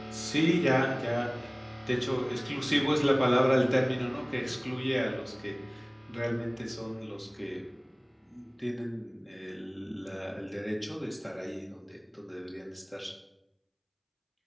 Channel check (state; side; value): identical; both; correlation 1.00